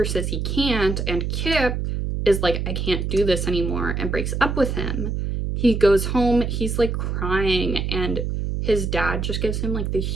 says he can't, and Kip is like, I can't do this anymore, and breaks up with him. He goes home, he's like crying, and his dad just gives him like the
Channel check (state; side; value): noise; right; hum, 2 dB below the sound